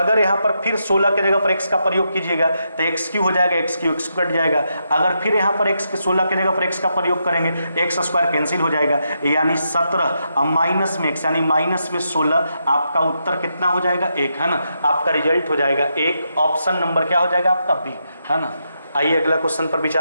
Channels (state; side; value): inverted; both; correlation -0.82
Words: यहाँ पर फिर 16 के जगह पर x का प्रयोग कीजिएगा तो x क्यू हो जाएगा, x क्यू x कट जाएगा। अगर फिर यहाँ पर x के 16 के जगह पर x का प्रयोग करेंगे x स्क्वायर कैंसिल हो जाएगा, यानी 17 माइनस में x यानी माइनस में 16, आपका उत्तर कितना हो जाएगा 1, है ना, आपका रिजल्ट हो जाएगा 1। ऑप्शन नंबर क्या हो जाएगा आपका बी, है ना। आइए अगला क्वेश्चन पर